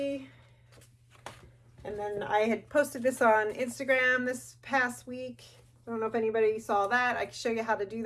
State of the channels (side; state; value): both; identical; correlation 1.00